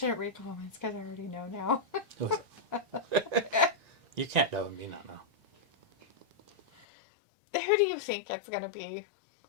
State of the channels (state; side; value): drops out; right; at 6.9 s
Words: read comments because I already know now. Who is it? You can't know and me not know. Who do you think it's going to be?